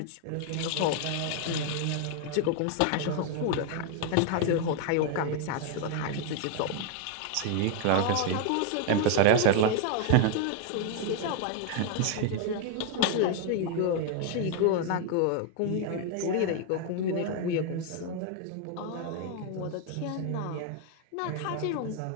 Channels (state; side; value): different; both; correlation 0.00